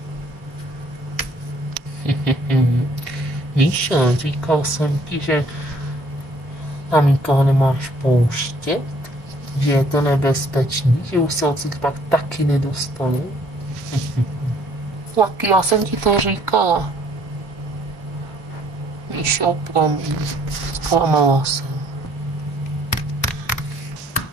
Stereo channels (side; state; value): both; normal; correlation 0.61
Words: Míša, říkal jsem ti, že tam nikoho nemáš pouštět, že je to nebezpečný, že už se odsud pak taky nedostanu. Lucky, já jsem ti to říkala. Míšo, promiň, zklamala jsem.